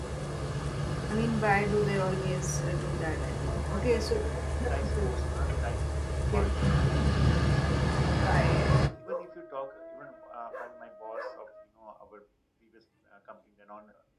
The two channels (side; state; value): both; identical; correlation 1.00